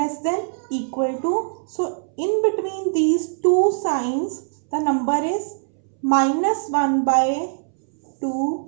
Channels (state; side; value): silent; left; 64 dB below the other